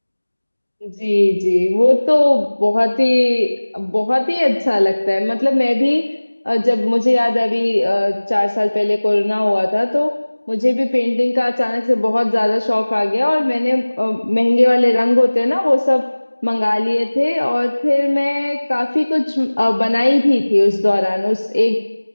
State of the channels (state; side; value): inverted; both; correlation -1.00